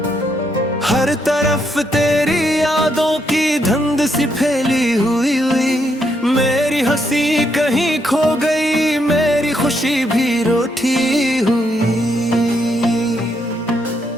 हर तरफ तेरी यादों की धुंध सी फैली हुई मेरी हंसी कहीं खो गई, मेरी खुशी भी रूठी हुई।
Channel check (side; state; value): both; normal; correlation 0.77